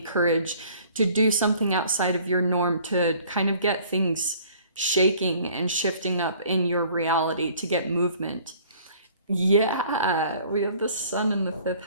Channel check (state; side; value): inverted; both; correlation -0.54